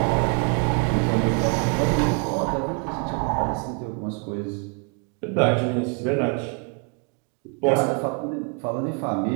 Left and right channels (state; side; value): quieter; left; 36.9 dB